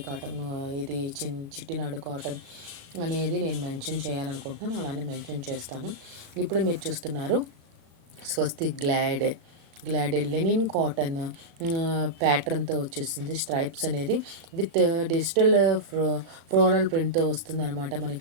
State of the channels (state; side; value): late; left; 37 ms